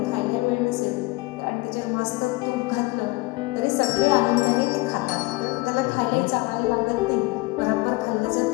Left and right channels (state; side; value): quieter; right; 23.1 dB